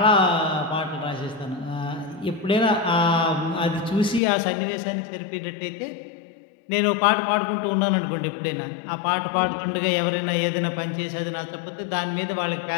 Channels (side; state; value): right; drops out; at 4.2 s